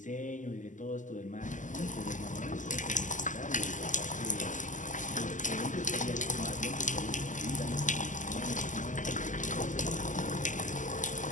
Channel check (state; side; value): late; right; 0.37 ms